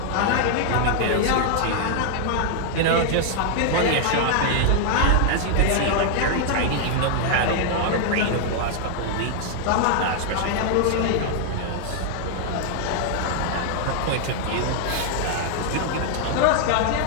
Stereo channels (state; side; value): different; both; correlation 0.00